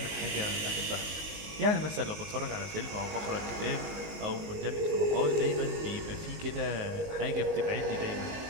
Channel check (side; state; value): left; late; 19 ms